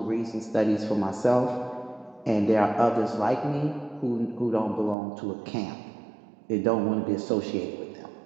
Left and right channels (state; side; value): drops out; left; at 5.0 s